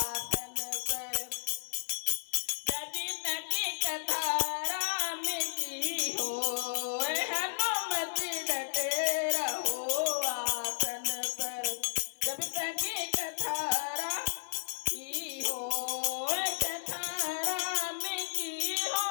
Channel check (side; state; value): right; silent; 56 dB below the other